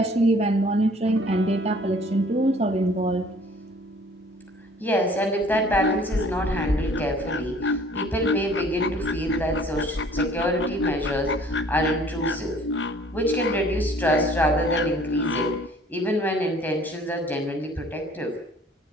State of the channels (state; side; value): normal; both; correlation 0.54